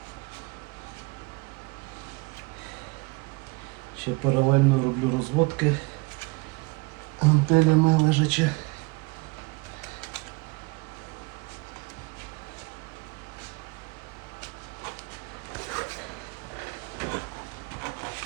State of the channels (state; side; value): quieter; left; 26.7 dB